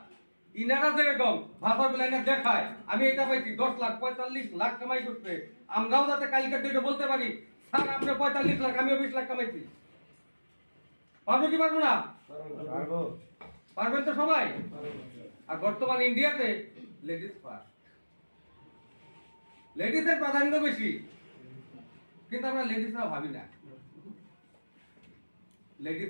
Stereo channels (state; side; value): inverted; both; correlation -1.00